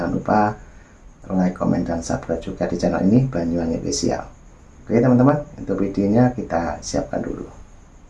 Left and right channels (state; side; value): identical; both; correlation 1.00